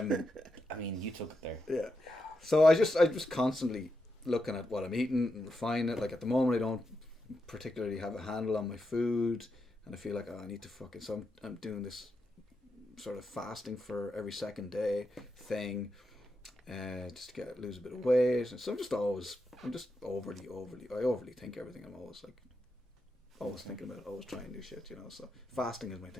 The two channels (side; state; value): both; normal; correlation 0.85